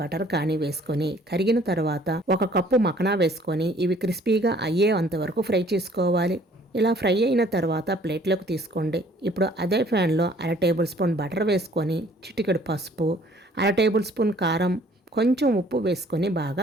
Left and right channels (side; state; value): both; normal; correlation 0.57